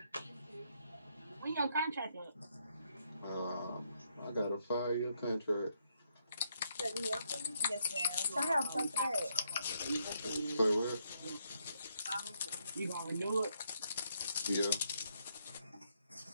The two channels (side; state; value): both; inverted; correlation -0.76